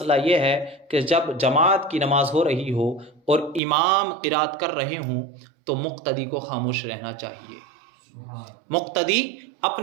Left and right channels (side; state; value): left; drops out; at 3.6 s